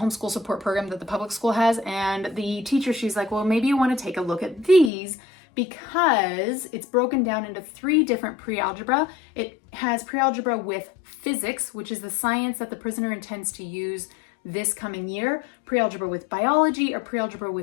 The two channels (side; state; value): right; drops out; at 4.9 s